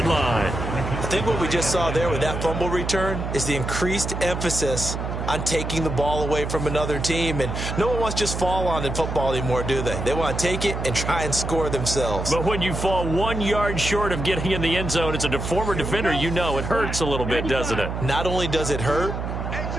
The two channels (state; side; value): noise; right; hum, 4 dB below the sound